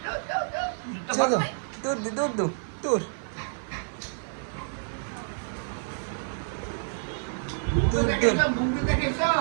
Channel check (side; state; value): left; silent; 57 dB below the other